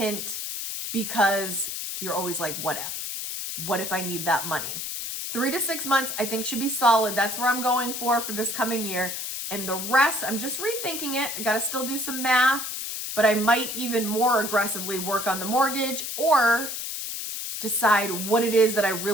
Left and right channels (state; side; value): noise; left; hiss, 5 dB below the sound